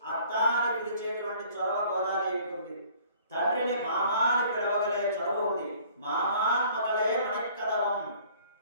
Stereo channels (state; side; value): inverted; both; correlation -0.54